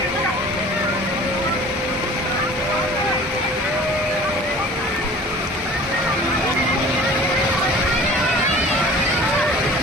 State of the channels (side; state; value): both; normal; correlation 0.45